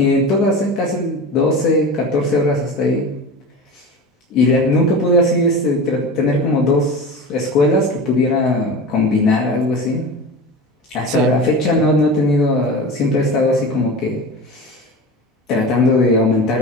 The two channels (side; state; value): both; normal; correlation 0.30